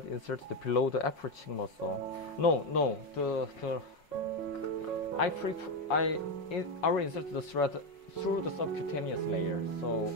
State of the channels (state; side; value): late; right; 5.6 ms